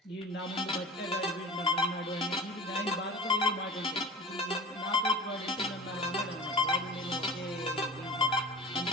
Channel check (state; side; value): normal; both; correlation 0.36